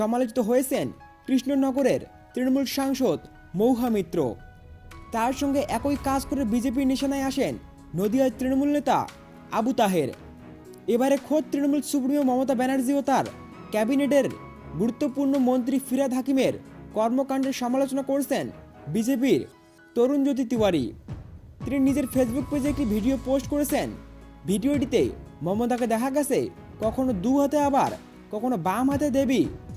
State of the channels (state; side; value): identical; both; correlation 1.00